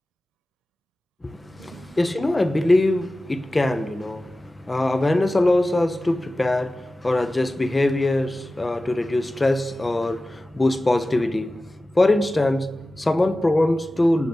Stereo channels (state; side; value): normal; both; correlation 0.96